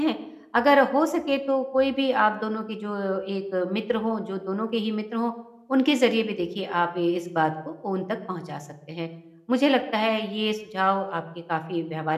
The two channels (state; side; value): identical; both; correlation 1.00